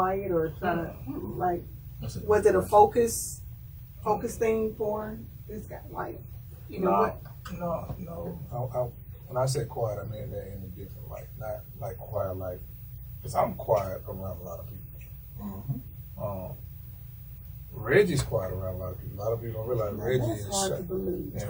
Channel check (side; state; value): both; identical; correlation 1.00